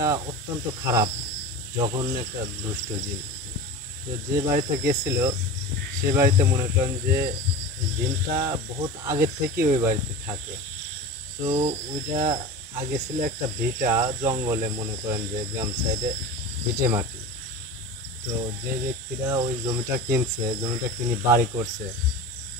অত্যন্ত খারাপ জঘন্য একটা দুষ্ট জীব। তো যে বাড়িতে গেছিল সে বাড়িতে মনে করেন যে দিনটা বহুত আগের থেকে ওই বাড়িতে থাকে। তো ওইটা আগে ছিল একটা ভিটা জঙ্গলে, মনে করেন যে গ্রাম সাইডে ভিটে মাটি। তো যে ব্যক্তিরা ওই জমিটা কিনছে, জমিটা কিনে বাড়ি করছে,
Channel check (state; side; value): normal; both; correlation 0.31